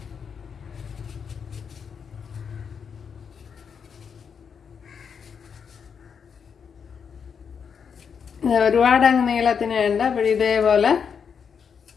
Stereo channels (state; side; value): quieter; right; 6.7 dB